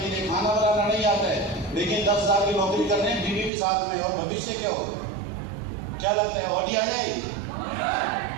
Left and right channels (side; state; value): left; drops out; at 3.5 s